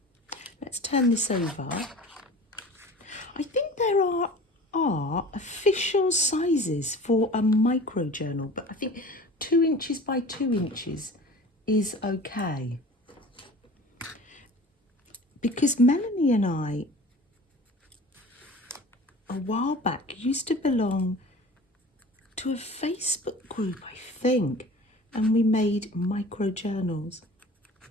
Let's turn this over. I think there are official sizes for a micro journal, but I think 2 inches by 2 inches is okay. Because Melanie and I, a while back, used to belong to a Facebook group, I think, and we made micro journals.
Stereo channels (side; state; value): both; normal; correlation 0.41